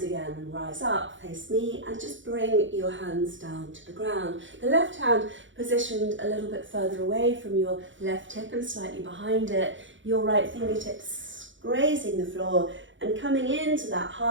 again and rise up, face me, and just bring your hands down to the ground. The left hand positioned a little bit further away from your left hip and slightly behind it. Your right fingertips grazing the floor and coming into that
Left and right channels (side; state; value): left; late; 0.55 ms